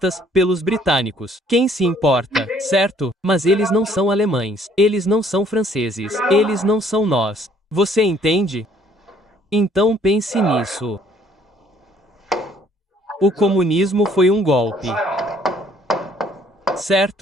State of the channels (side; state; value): both; normal; correlation 0.61